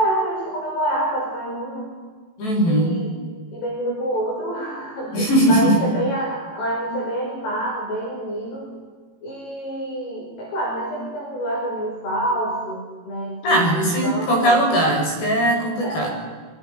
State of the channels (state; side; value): late; right; 18 ms